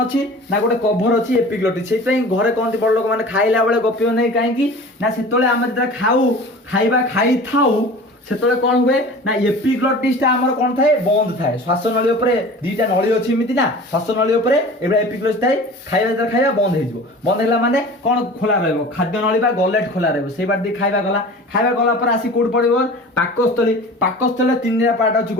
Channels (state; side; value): normal; both; correlation 0.39